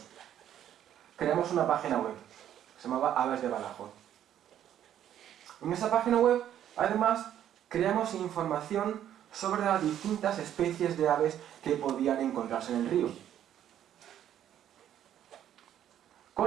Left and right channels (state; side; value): quieter; left; 10.7 dB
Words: Creamos una página web, se llamaba Aves de Badajoz. En esa página web, además, creamos información sobre las distintas especies de aves que podían encontrarse en el río,